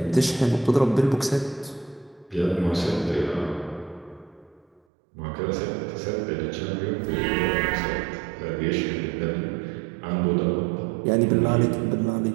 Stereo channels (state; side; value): drops out; left; at 4.8 s